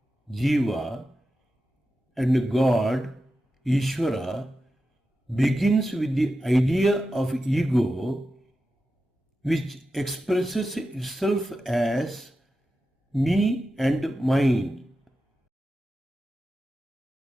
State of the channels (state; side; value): normal; both; correlation 0.91